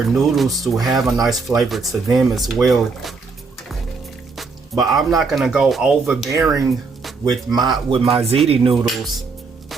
noodles to have a nice flavor to them as well. But I'm not gonna go overbearing with my ziti noodles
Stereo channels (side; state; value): left; quieter; 4.4 dB